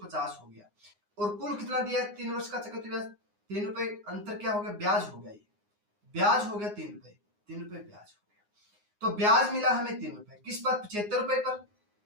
हो गया और कुल कितना दिया 3 वर्ष का चक्रवृद्धि ब्याज 3 रुपए, अंतर क्या हो गया, ब्याज हो गया, ये ब्याज हो गया 3 रुपए, 3 रुपए ब्याज हो गया, तो ब्याज मिला हमें 3 रुपए, किस पर, 75 रुपए पर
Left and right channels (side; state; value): left; late; 9.6 ms